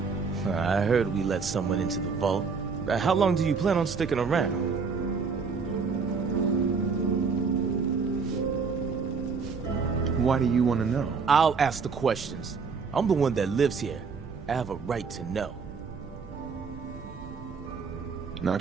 I heard we let someone into the vault. How long do you plan on sticking around? Why do you want to know? I'll ask the questions. I'm the one that lives here. I have a right to know. Not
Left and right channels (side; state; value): left; quieter; 5.2 dB